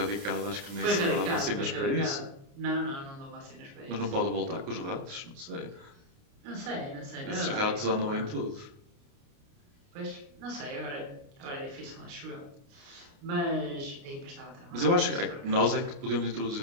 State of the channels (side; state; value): left; late; 29 ms